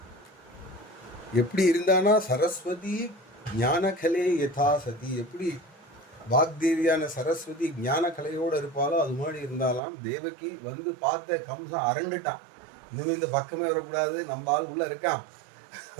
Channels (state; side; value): drops out; left; at 9.8 s